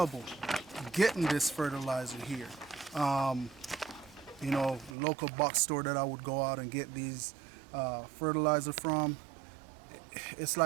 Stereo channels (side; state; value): left; drops out; at 5.0 s